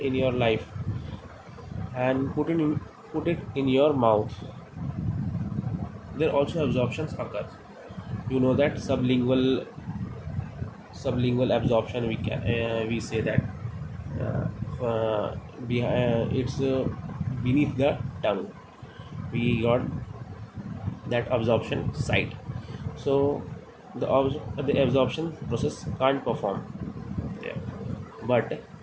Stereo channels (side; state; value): both; identical; correlation 1.00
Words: in your life and put it in your mouth, there also absorptions occur. You know that sublingual absorption, we say that it's beneath the tongue. We got that absorption site. So the absorption process can't perform there. But